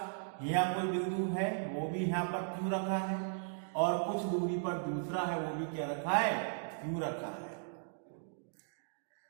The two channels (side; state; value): left; silent; digital silence